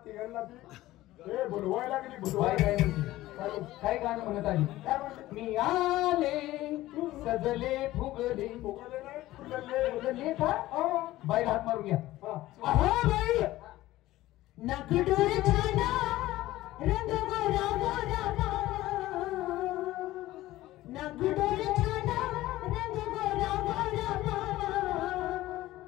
तिघांना बोलवायला लागली. काय गाणं म्हणत आली, मी आले सजले फुगले फुगले का बाई हात मारून घ्या. बाई नकडोर छाना रंग गोरा गोरा नकडोर छाना रंग गोरा गोरा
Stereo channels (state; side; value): quieter; right; 16.4 dB